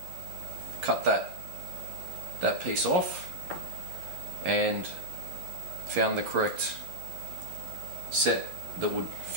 cut that piece off, and found the correct set that would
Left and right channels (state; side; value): late; left; 11 ms